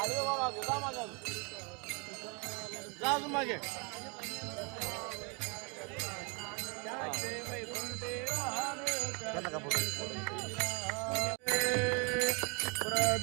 वा मागे जा मागे जा अजून मागे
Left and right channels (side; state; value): left; quieter; 32.4 dB